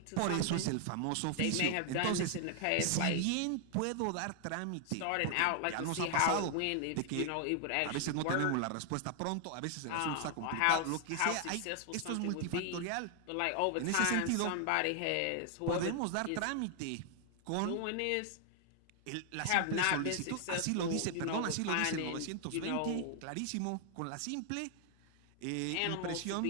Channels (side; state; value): both; different; correlation 0.00